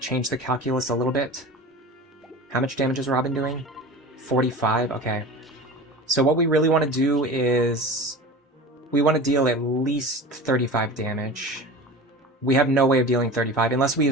the calculus a little bit. How much damage is Robin doing? 45? Okay. So what we really want to do is... We want to deal at least 35 damage. We have no way of dealing 35 unless we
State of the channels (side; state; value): both; normal; correlation 0.34